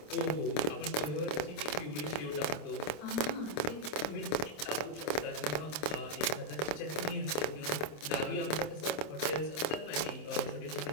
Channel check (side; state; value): right; late; 26 ms